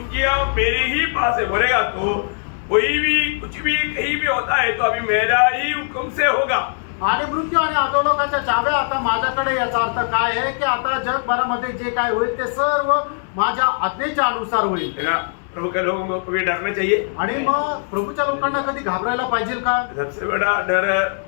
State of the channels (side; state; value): right; silent; digital silence